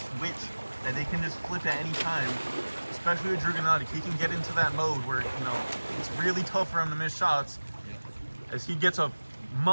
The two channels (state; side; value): inverted; both; correlation -1.00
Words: that they can just flip at any time, especially with Drew Gennady. He can get into that mode where, it's really tough for him to miss shots as he gets a